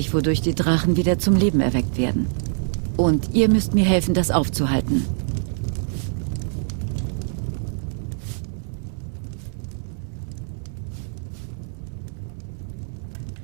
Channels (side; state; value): left; silent; 63 dB below the other